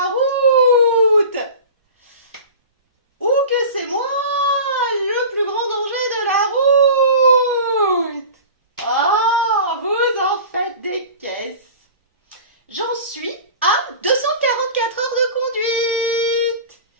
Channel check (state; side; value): inverted; both; correlation -0.37